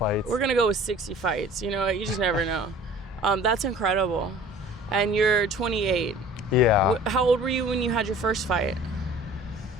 We're gonna go with 60 fights. You just never know. That's incredible. And you're 28. Yeah. How old were you when you had your first fight?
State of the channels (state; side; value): normal; both; correlation 0.47